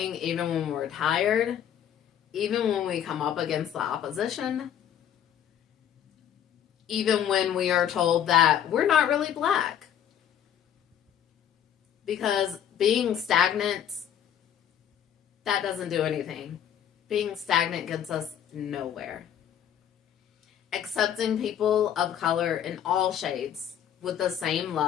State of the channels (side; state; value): right; quieter; 9.7 dB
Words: even when we're tired, even when we come up against the opposition, even when we are told that we're not really black. Because being stagnant, that doesn't do anything. Being stagnant gets us nowhere. Accepting people of color in all shades with the same